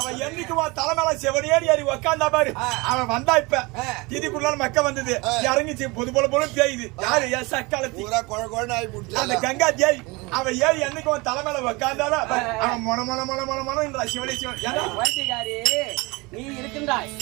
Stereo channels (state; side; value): quieter; left; 25.2 dB